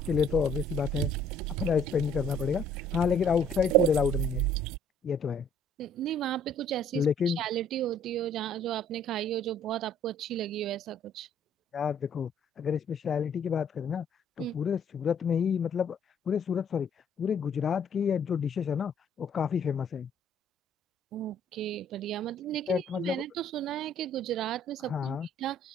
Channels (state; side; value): normal; both; correlation 0.59